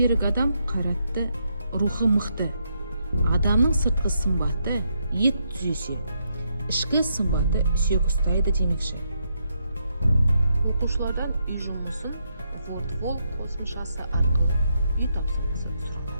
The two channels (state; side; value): inverted; both; correlation -0.78